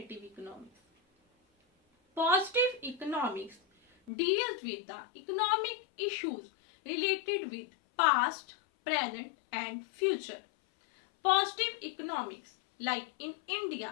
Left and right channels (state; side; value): drops out; right; at 4.1 s